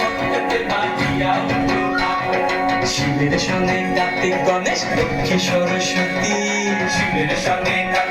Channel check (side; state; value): both; identical; correlation 1.00